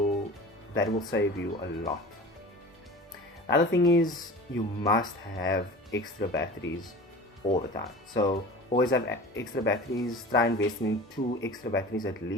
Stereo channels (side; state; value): both; normal; correlation 0.38